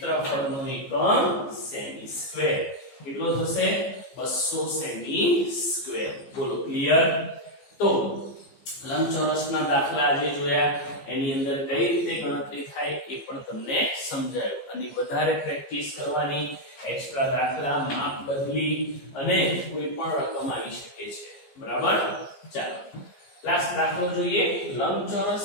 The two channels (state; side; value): late; right; 15 ms